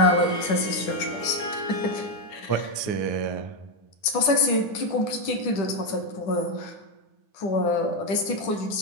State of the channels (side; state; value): right; late; 9.8 ms